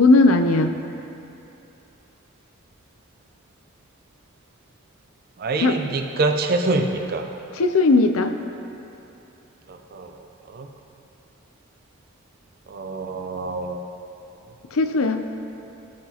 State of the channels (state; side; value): normal; both; correlation 0.38